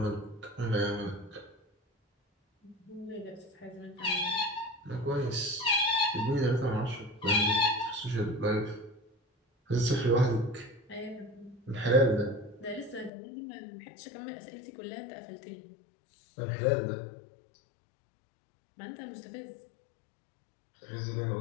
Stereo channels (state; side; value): drops out; right; at 13.1 s